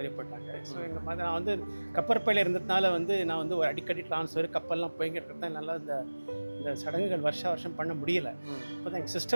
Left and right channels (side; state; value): both; inverted; correlation -1.00